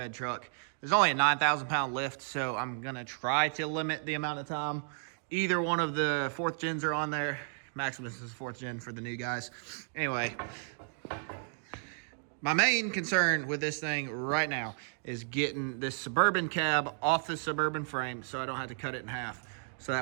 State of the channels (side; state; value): left; silent; digital silence